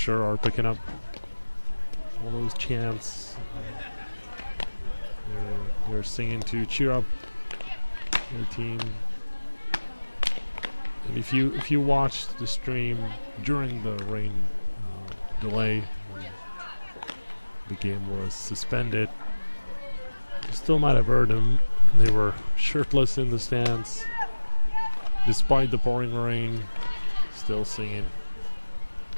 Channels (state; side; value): inverted; both; correlation -1.00